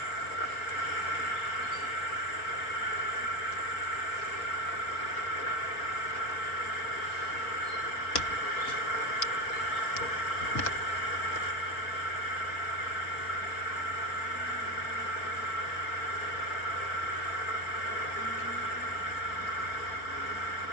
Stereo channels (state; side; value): late; right; 4.9 ms